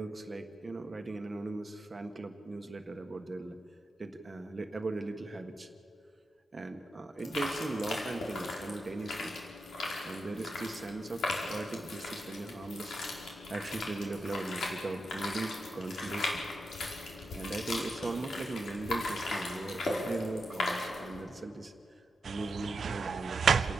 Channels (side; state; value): both; normal; correlation 0.87